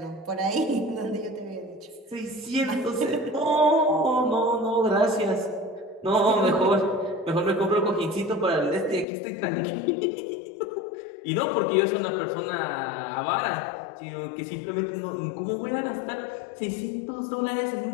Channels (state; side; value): drops out; right; at 9.1 s